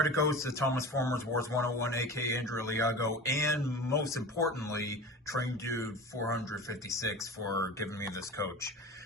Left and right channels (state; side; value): normal; both; correlation 0.33